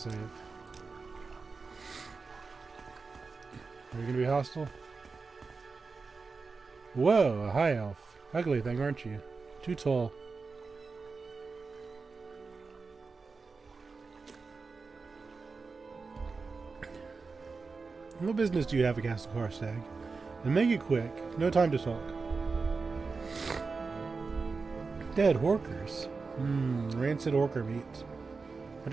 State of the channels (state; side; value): quieter; left; 4.4 dB